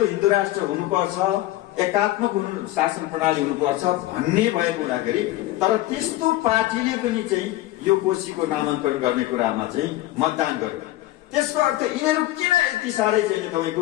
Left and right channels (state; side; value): quieter; right; 16.1 dB